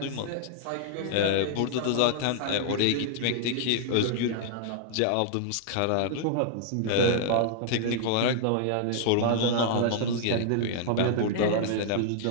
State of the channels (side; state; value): both; different; correlation -0.01